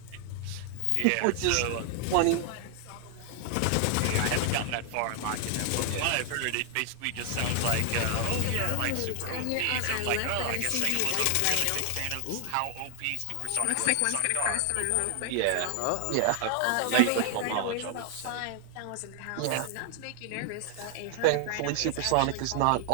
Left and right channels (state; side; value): different; both; correlation 0.00